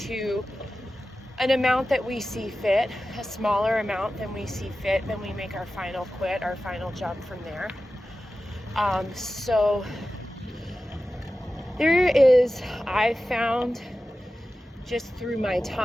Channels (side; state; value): both; normal; correlation 0.94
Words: an amount that we see fit, a smaller amount than we see fit, then we make our final quit, our final jump from there. So there is, I found just through my